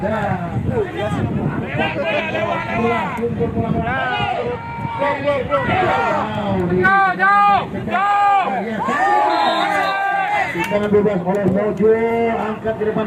Kita bebas oleh Mojo angkat di depan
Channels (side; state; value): both; identical; correlation 1.00